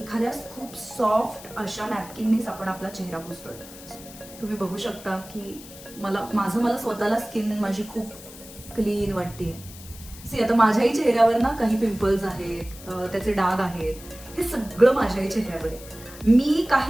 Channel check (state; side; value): noise; left; hiss, 17 dB below the sound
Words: खूप सॉफ्ट अशा नॅपकिननीच आपण आपला चेहरा पुसतोय. तुम्ही बघू शकता की मला स्वतःला स्किन माझी खूप क्लीन वाटतेय. सी, आता माझ्याही चेहऱ्यावर ना काही पिंपल्स आहेत, त्याचे डाग आहेत, हे सगळं माझ्याही चेहऱ्यावर आहे. मी